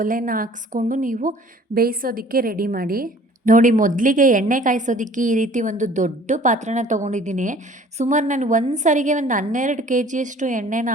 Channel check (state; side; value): normal; both; correlation 0.51